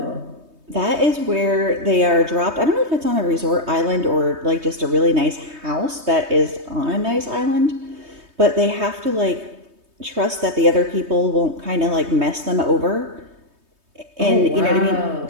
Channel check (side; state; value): left; late; 3.2 ms